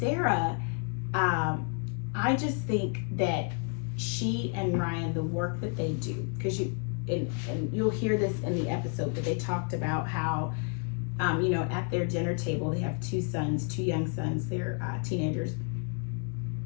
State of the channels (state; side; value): quieter; right; 39.1 dB